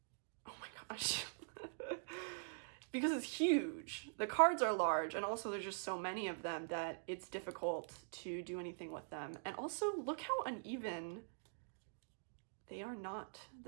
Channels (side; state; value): left; silent; digital silence